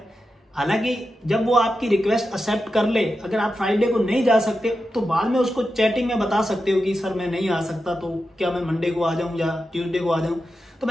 हालांकि जब वो आपकी रिक्वेस्ट एक्सेप्ट कर ले, अगर आप फ्राइडे को नहीं जा सकते तो बाद में उसको चैटिंग में बता सकते हो कि सर मैं नहीं आ सकता, तो क्या मैं मंडे को आ जाऊं या ट्यूसडे को आ जाऊं। तो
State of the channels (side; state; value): both; normal; correlation 0.90